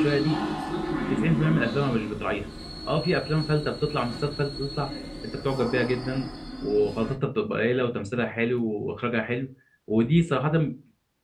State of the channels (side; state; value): both; identical; correlation 1.00